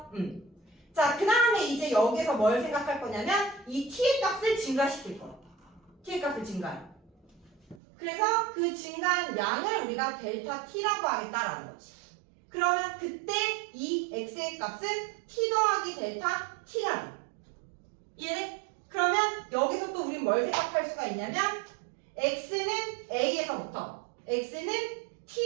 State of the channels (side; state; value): left; drops out; at 7.8 s